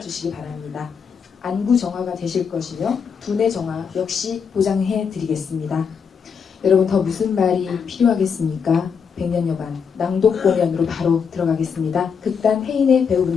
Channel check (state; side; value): quieter; right; 6.4 dB